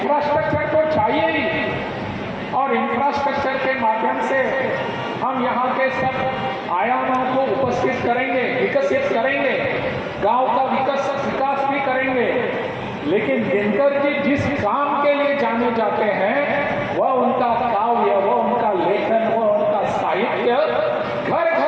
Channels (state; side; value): identical; both; correlation 1.00